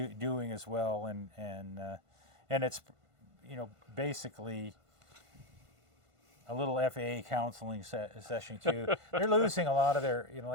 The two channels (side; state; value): left; late; 1.5 ms